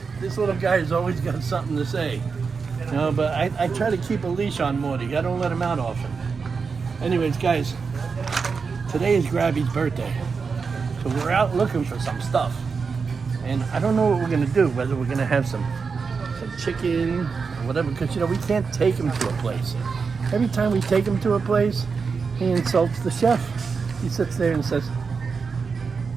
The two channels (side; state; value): left; quieter; 5.2 dB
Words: this little guy has always got something to say. You know, but I try to keep a leash on Morty. I don't let him out often. Anyways, guys, today is Grabby's birthday. So we're out looking for some stuff. And I don't know what we're going to do, whether we're going to have some chicken or whatever, because, you know, we can't take him to a place. Every time we take him to a place, he insults the chef. He sits there and says,